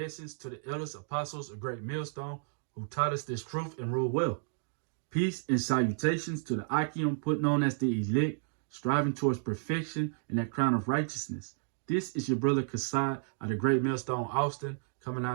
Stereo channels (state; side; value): silent; left; digital silence